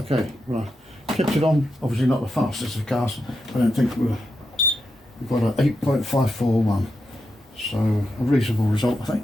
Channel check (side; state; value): both; normal; correlation 0.85